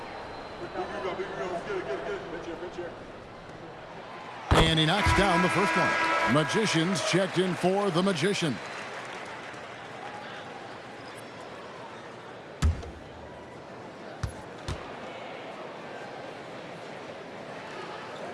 And he knocks down the first one. Magicians checked in for the Magician.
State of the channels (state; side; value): identical; both; correlation 1.00